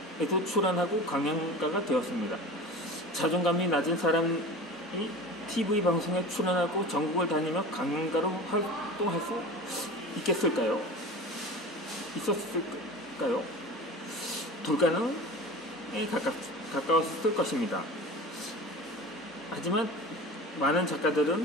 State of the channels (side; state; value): both; normal; correlation 0.35